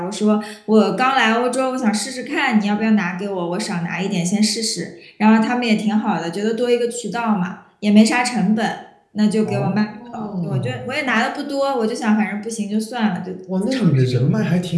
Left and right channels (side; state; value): both; identical; correlation 1.00